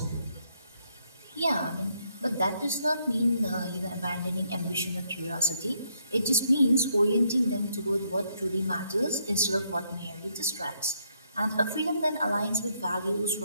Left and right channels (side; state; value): both; inverted; correlation -0.74